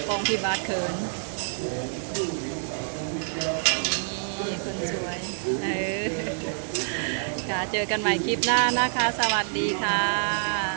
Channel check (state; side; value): silent; left; digital silence